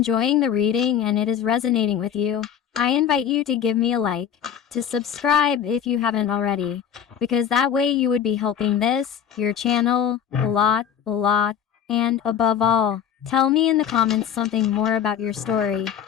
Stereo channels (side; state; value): right; quieter; 8.7 dB